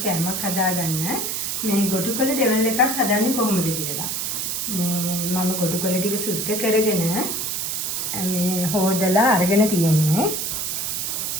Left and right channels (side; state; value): right; noise; hiss, 2 dB below the sound